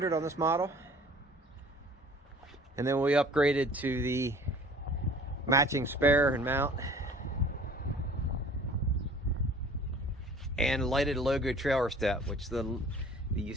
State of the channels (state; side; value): normal; both; correlation 0.48